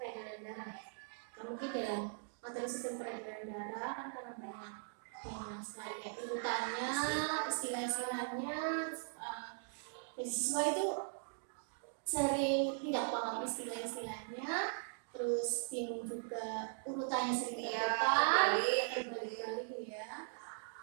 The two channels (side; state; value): left; silent; digital silence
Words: darah. Mungkin dalam materi sistem peredaran darah kan karena banyak sekali kayak urutannya, istilah-istilahnya, dan siswa itu sering tidak paham istilah-istilahnya, terus bingung juga urutannya sering terbalik ya.